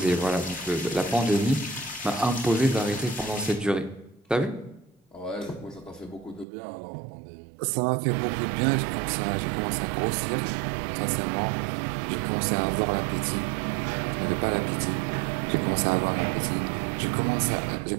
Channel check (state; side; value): drops out; left; at 6.5 s